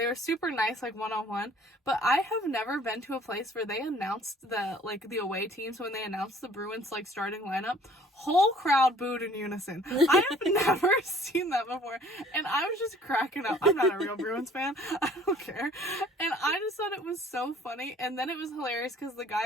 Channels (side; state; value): both; normal; correlation 0.54